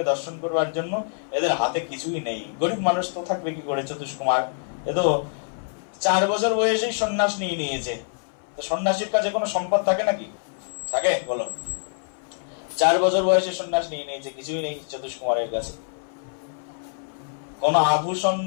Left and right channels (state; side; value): silent; right; 58 dB below the other